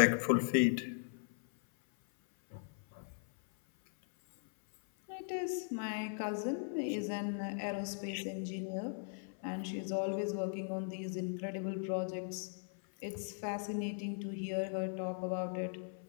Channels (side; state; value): right; silent; 52 dB below the other